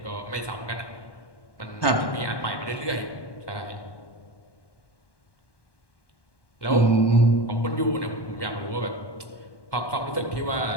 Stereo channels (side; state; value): right; late; 1.2 ms